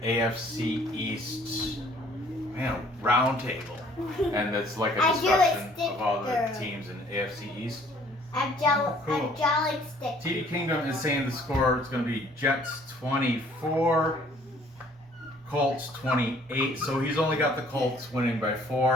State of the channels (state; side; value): normal; both; correlation 0.58